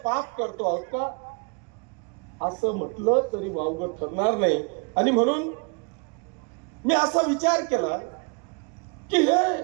करतो आहोत का? असं म्हटलं तरी वावगं ठरणार नाही. आणि म्हणून मी असा विचार केला की हे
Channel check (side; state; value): left; quieter; 35.5 dB